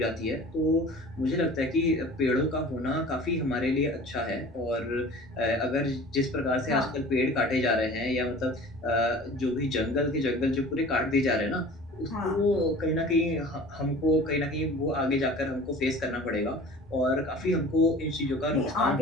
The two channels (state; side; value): normal; both; correlation 0.43